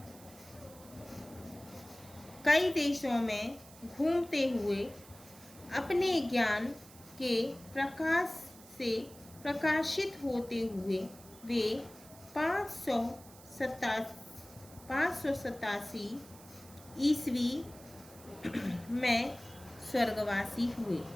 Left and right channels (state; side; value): noise; right; hiss, 21 dB below the sound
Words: कई देशों में घूमते हुए अपने ज्ञान के प्रकाश से प्रकाशित होते हुए वे 587 ईस्वी में स्वर्गवासी हुए।